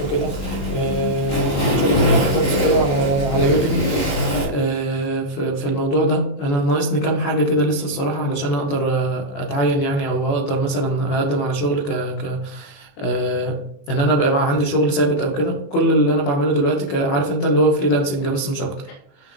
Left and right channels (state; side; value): late; right; 21 ms